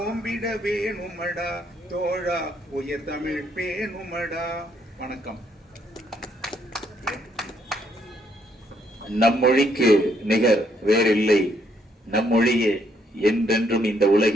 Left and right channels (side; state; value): both; normal; correlation 0.72